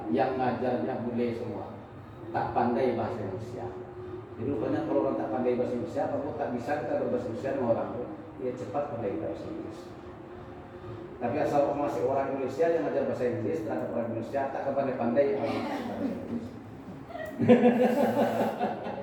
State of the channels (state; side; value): identical; both; correlation 1.00